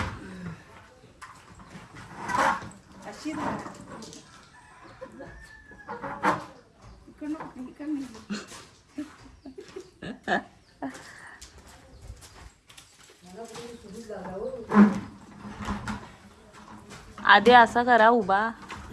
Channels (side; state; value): both; identical; correlation 1.00